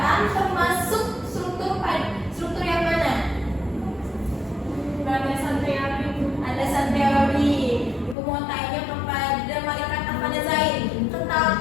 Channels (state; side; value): drops out; right; at 8.2 s